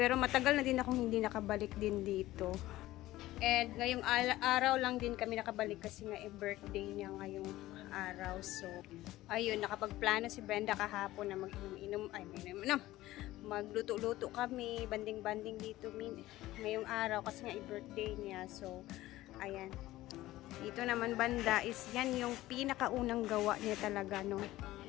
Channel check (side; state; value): right; quieter; 16.4 dB